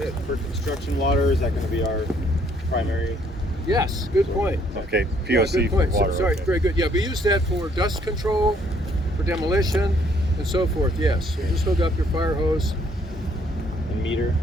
For construction water, is that going to be our primary? Yes, good point. Okay, Yeah, POC good point. for water. Sorry, okay. very good. Yeah, we use that for dust control, for demolition, and so forth. Yes. So just hook up your fire hose. And meter?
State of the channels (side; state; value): both; normal; correlation 0.65